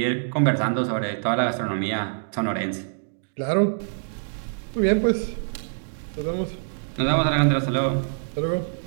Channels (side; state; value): left; silent; digital silence